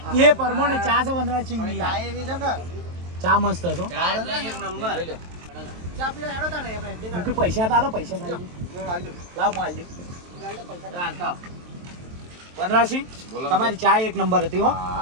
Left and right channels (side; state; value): left; late; 23 ms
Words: એ પ્રમાણે ચા છે વનરાજસિંહ ની ચા એવી છે કે ચા મસ્ત છે હો. ચા એટલે એક નંબર ચા પીવા હેડો તાણે આપણે. મુખી પૈસા તાલો પૈસા તાલો હું હાલજો. લાવ હું આલજો ચાલતા વનરાજસિંહ બોલો. તમારી ચા એક નંબર હતી હો